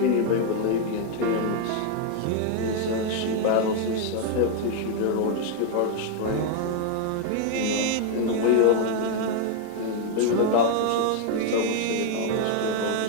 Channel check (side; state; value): both; different; correlation 0.00